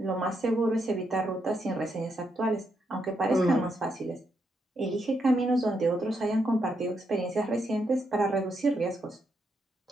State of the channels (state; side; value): normal; both; correlation 0.80